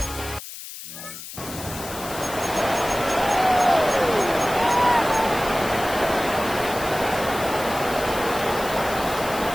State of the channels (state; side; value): noise; left; hiss, 12 dB below the sound